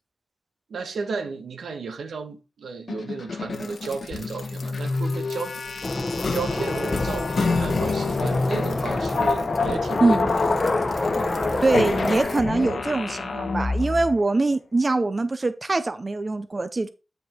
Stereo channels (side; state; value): both; normal; correlation 0.92